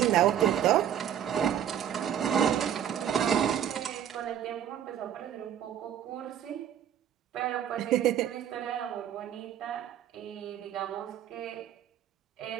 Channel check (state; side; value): quieter; left; 10.0 dB